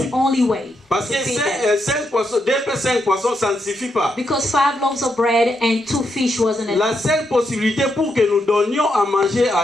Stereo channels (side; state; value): both; normal; correlation 0.81